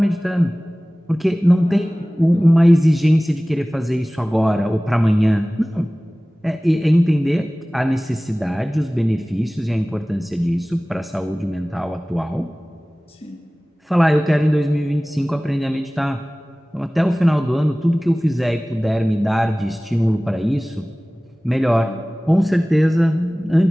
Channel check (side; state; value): both; normal; correlation 0.98